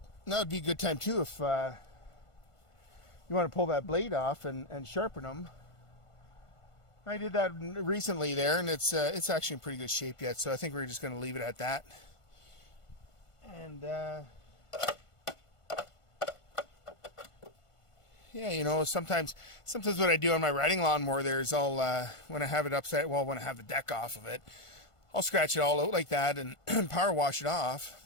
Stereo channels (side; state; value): right; late; 1.5 ms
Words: that would be a good time too if you want to pull that blade off and sharpen them. I did that recently there, and it's actually in pretty good shape yet, so I think we're just going to leave it at that. And yeah, you know, sometimes what I do on my riding lawnmower there is I'll when I have it upside, well, when I have the deck off of it, I'll scratch it all out like that and power wash it off,